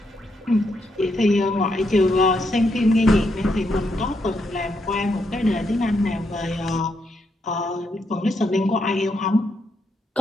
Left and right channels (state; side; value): normal; both; correlation 0.79